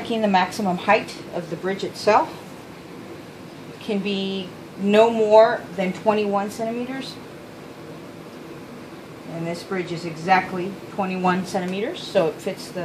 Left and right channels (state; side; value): identical; both; correlation 1.00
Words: the maximum height of the bridge itself. It can be no more than 21 centimeters. And this bridge is exactly 21 centimeters, so it fits